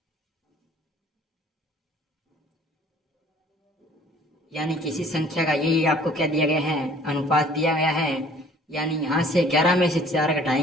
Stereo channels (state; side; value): normal; both; correlation 0.54